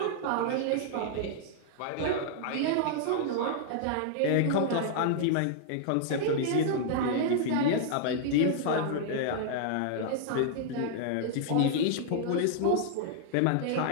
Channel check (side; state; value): both; different; correlation -0.01